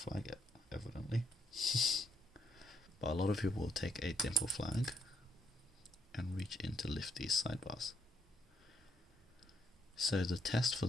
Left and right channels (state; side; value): normal; both; correlation 0.72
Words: evidently. But a lot of people will take a Dimple flag and reach in to lift these sidebars. So the test for